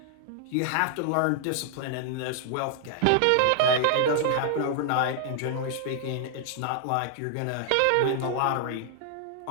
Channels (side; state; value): both; different; correlation 0.00